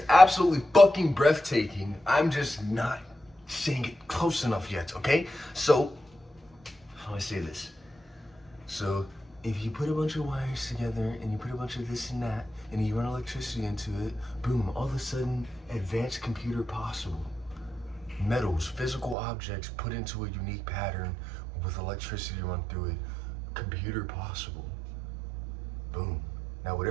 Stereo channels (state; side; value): drops out; left; at 19.2 s